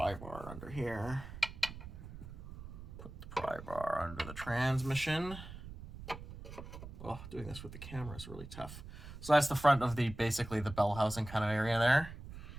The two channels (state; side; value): noise; right; rumble, 13 dB below the sound